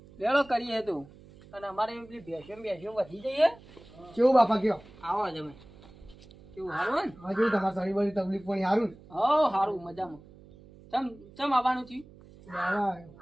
લેડો કરીએ તું અને અમારે પેલી ભેંસો વધી જઈએ. કેવું બાપા કયો? આવો જમે કેવું સારું ને? હા કેવું તમારે સારી બધી તકલીફ પણ સારું ને? હો સારું મજામાં. ચમ આવવાનું થયું? લેવા આવ્યો.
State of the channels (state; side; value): noise; right; hum, 22 dB below the sound